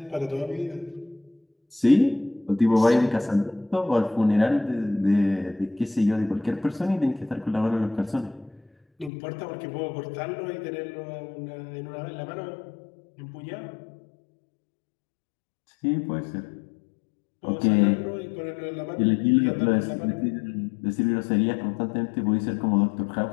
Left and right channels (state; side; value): drops out; right; at 9.1 s